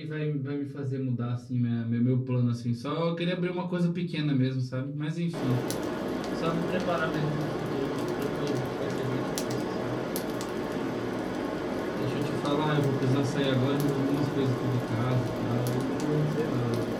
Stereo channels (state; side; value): identical; both; correlation 1.00